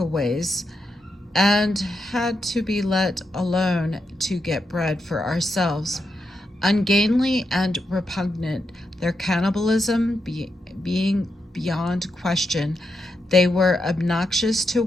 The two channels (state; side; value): normal; both; correlation 0.84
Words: and had to be let alone to get bread for ourselves. Ungainly and repugnant, their cannibalism being beyond question, they were obnoxious to